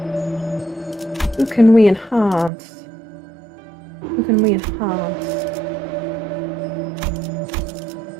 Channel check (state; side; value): drops out; left; at 2.5 s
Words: Who can we enhance? Who can we enhance?